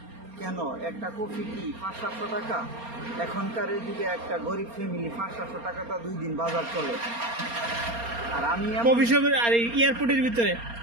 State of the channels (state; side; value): late; left; 4.3 ms